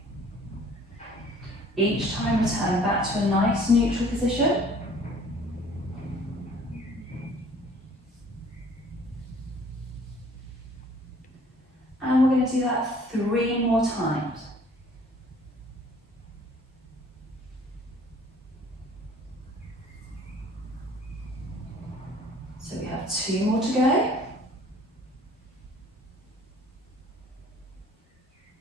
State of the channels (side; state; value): both; normal; correlation 0.54